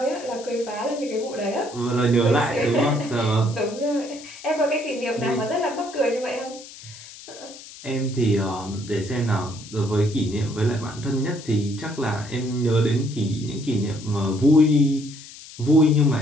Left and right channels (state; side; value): noise; left; hiss, 16 dB below the sound